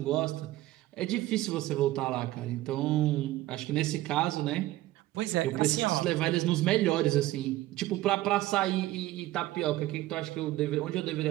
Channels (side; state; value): left; quieter; 16.3 dB